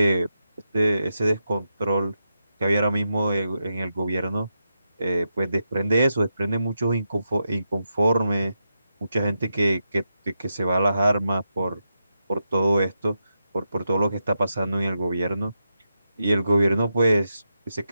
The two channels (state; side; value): inverted; both; correlation -0.87